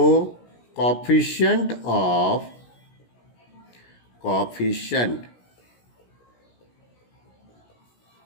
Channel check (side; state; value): right; late; 17 ms